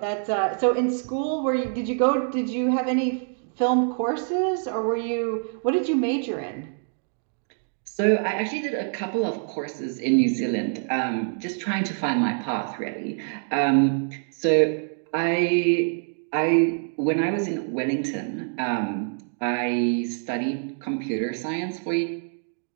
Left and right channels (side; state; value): left; silent; 61 dB below the other